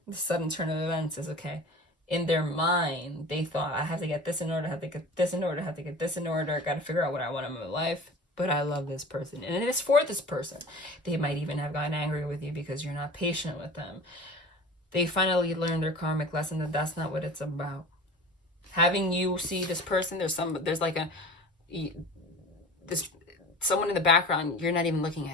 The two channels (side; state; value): both; normal; correlation 0.38